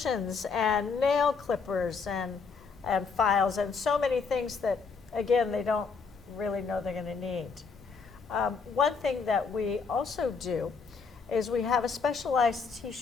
and nail clippers and files and so many things that, again, they don't really know they're going to need. One thing that we also do is we have a specialized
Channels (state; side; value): quieter; right; 5.1 dB